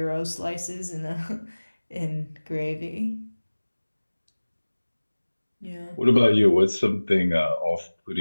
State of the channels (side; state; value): both; inverted; correlation -1.00